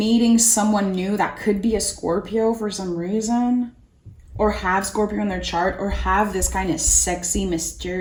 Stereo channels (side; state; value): both; identical; correlation 1.00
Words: someone new that could be a Scorpio for some reason, or have Scorpio in their chart, or have this kind of sexy,